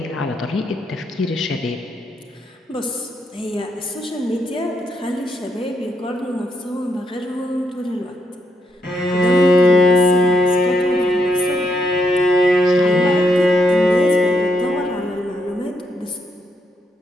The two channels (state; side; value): normal; both; correlation 0.77